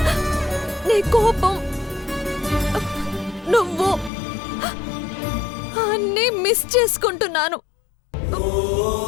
నీ కోపం, నువ్వు అన్నీ మిస్ చేసుకుంటున్నాను.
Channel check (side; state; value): right; drops out; at 4.1 s